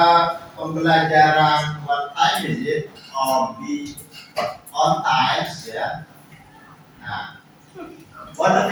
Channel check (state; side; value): identical; both; correlation 1.00